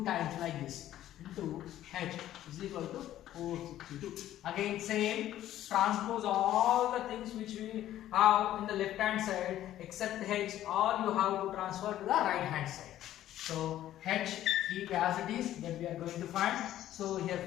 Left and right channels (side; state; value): right; quieter; 12.9 dB